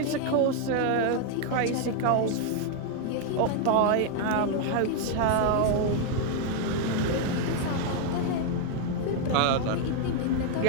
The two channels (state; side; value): different; both; correlation 0.00